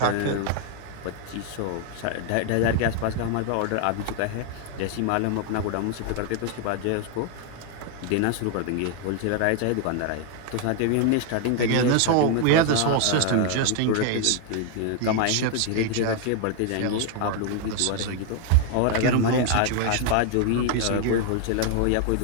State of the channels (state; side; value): different; both; correlation 0.00